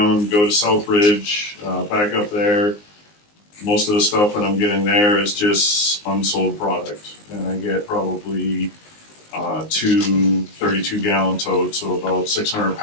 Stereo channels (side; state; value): right; late; 19 ms